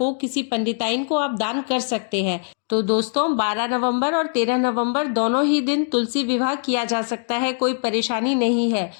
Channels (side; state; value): right; silent; 64 dB below the other